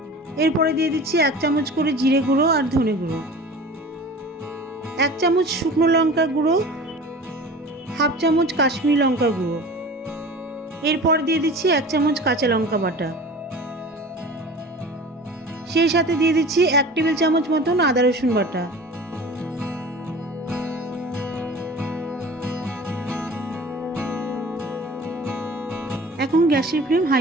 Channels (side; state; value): both; normal; correlation 0.39